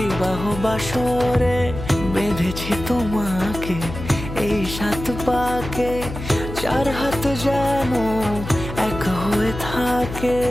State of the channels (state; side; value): noise; left; hum, 9 dB below the sound